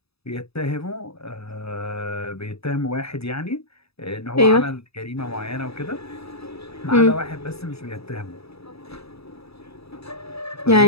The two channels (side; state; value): right; late; 0.78 ms